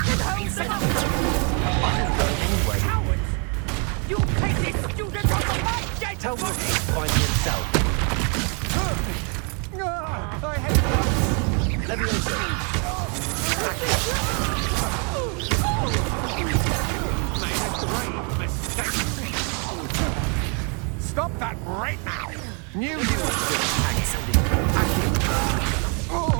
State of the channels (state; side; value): quieter; left; 37.1 dB